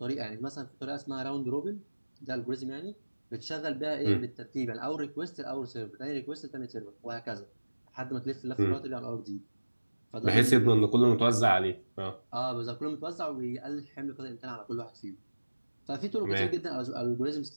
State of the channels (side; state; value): both; inverted; correlation -1.00